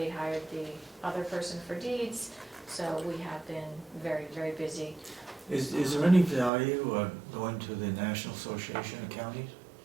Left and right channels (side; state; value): left; drops out; at 6.5 s